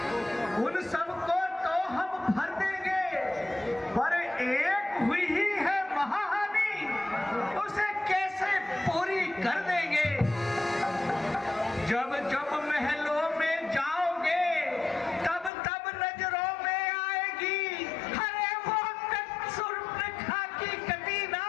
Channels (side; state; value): right; drops out; at 15.5 s